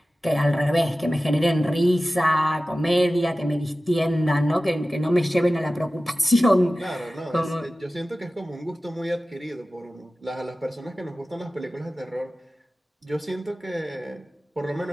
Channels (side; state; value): both; normal; correlation 0.96